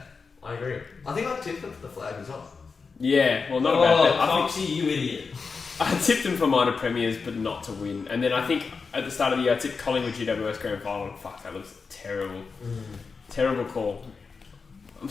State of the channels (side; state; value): right; quieter; 4.9 dB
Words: I agree. I think I tipped them for the flag as well. Yeah, well, not about that. I think Foxy, you idiot. I tipped them for minor premiers, but not to win. And then I think at the start of the year, I tipped Collingwood GWS Grand Final. And fuck, that looks terrible. Terrible call. I'm